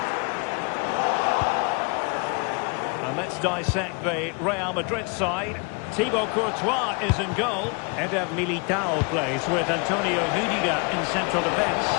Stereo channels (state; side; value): quieter; right; 33.4 dB